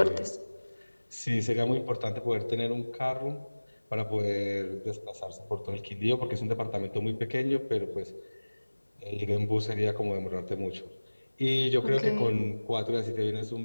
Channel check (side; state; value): both; inverted; correlation -1.00